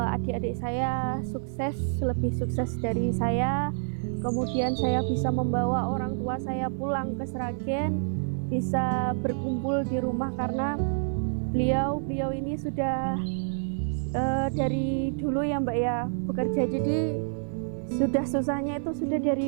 adik-adik saya sukses, lebih sukses dari saya. Kemudian saya bisa membawa orang tua saya pulang ke Sragen, bisa berkumpul di rumah, karena beliau ini sudah dari dulu ya Mbak ya bekerja, jadi sudah susahnya itu sudah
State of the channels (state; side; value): silent; left; 58 dB below the other